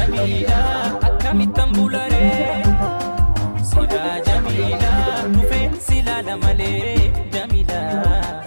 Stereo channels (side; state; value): both; inverted; correlation -1.00